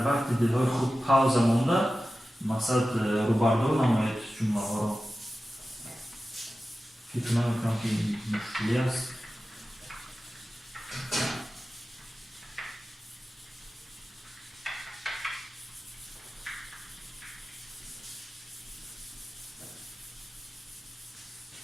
وقت دلهای خود پاوزه مونده مقصد روبردو نمایید جمله ها رو. فکر نمیکنم که این مشکلی است.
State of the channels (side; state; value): both; normal; correlation 0.94